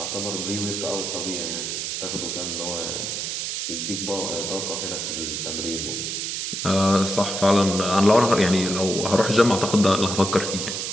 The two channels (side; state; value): right; noise; hiss, 3 dB below the sound